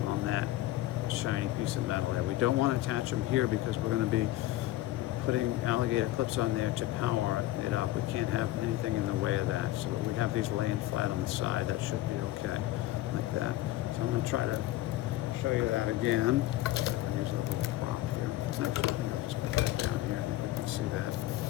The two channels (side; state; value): right; quieter; 16.0 dB